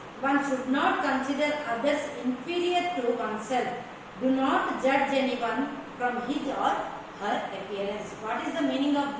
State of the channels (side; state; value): both; identical; correlation 1.00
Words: One should not consider others inferior to oneself. Do not judge anyone from his or her appearance. What is the meaning of